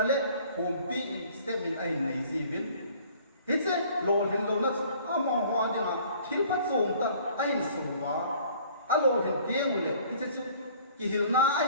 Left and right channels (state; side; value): inverted; both; correlation -0.53